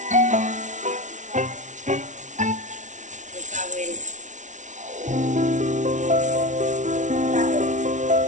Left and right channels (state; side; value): late; left; 0.36 ms